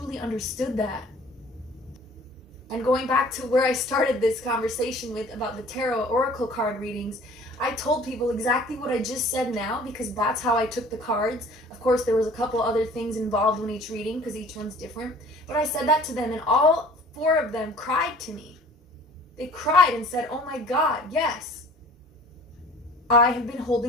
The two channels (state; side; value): normal; both; correlation 0.49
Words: understood that. And going back to where I started this conversation with about the tarot oracle card readings, I told people exactly what I just said now because that's how I took the cards. Of course, there was a couple other things involved in each reading because each one's different. But I said that to them and all 4 of them cried to me. They cried and said, oh my God, yes. I have been